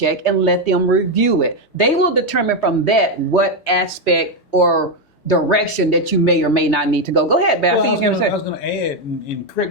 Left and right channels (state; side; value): normal; both; correlation 0.05